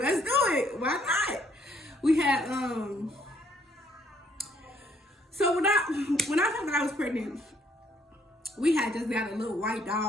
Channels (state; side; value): normal; both; correlation 0.67